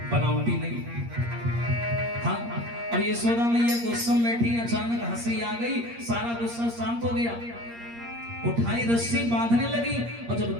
बनावटी नहीं। हाँ अब यशोदा मैया गुस्से में बैठी, अचानक हंसी आ गई, सारा गुस्सा शांत हो गया। उठाई रस्सी बांधने लगी और जब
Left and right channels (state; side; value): late; left; 8.6 ms